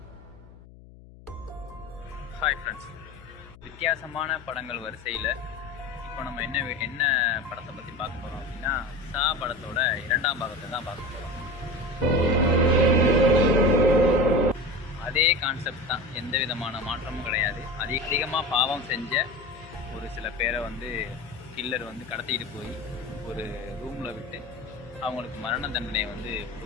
hi friends, வித்தியாசமான படங்கள் வரிசையில் இப்போ நம்ம என்ன படத்தை பற்றி பார்க்க போகிறோம் அப்படின்னா, சா படத்தோட 2ஆம் பாகத்தை தான் பார்க்க போகிறோம். அதே கான்செப்ட் தான், எந்த விதமான மாற்றமும் கிடையாது. அதிகமாக பாவம் செஞ்ச ஒரு சில பேரை கில்லர் கடத்திட்டு போய் ஒரு ரூமில் விட்டு அவங்களுக்கு மரண தண்டனையை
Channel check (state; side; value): noise; left; hum, 20 dB below the sound